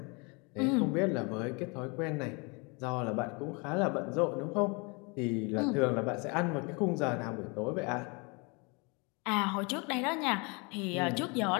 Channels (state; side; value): quieter; right; 30.5 dB